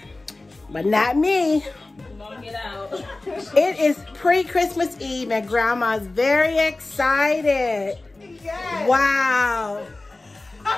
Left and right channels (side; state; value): right; quieter; 3.0 dB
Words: But not me. Don't get out. It is pre-Christmas Eve and Grandma's very excited. Yes. Wow.